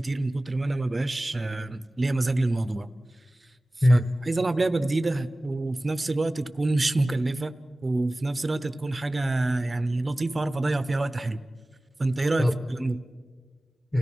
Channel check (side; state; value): both; normal; correlation 0.97